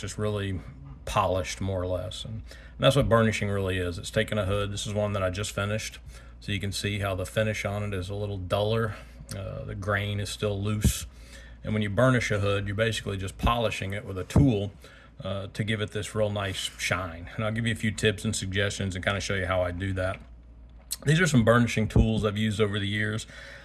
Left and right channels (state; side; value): identical; both; correlation 1.00